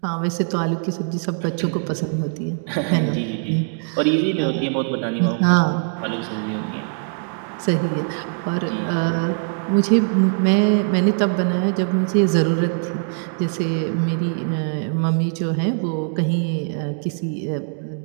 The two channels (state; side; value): silent; left; 63 dB below the other